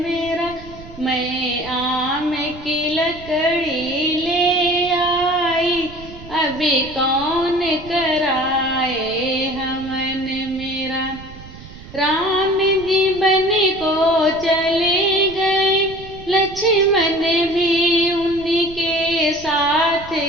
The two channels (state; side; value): noise; right; rumble, 17 dB below the sound